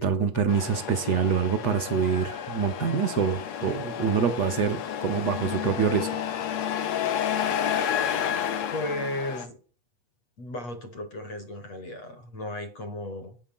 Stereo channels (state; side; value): late; right; 8.3 ms